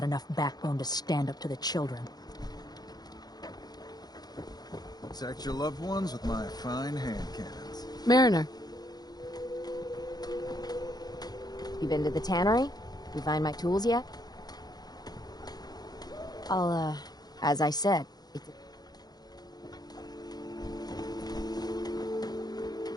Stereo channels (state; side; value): late; right; 0.19 ms